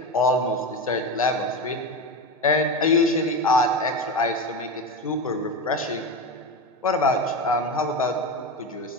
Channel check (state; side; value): normal; both; correlation 0.20